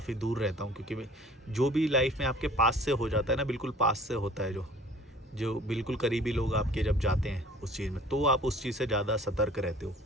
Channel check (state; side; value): normal; both; correlation 0.49